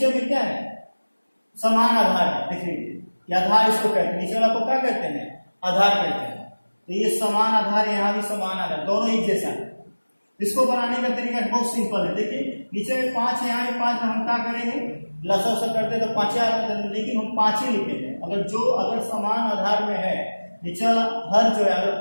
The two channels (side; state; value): both; inverted; correlation -1.00